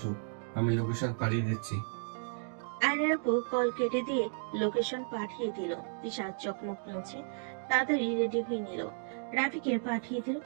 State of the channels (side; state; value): left; silent; digital silence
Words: আমি লোকেশন পাঠিয়ে দিচ্ছি। আয়নের আপু কল কেটে দিয়ে লোকেশন পাঠিয়ে দিল। তিশা চকমক মুছে তাড়াতাড়ি রেডি হয়ে নিল। রাফিকে পাঠিয়ে দিল।